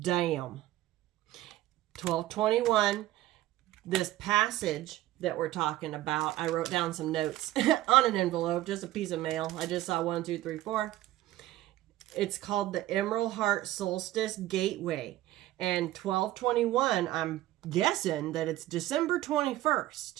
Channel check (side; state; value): left; quieter; 15.4 dB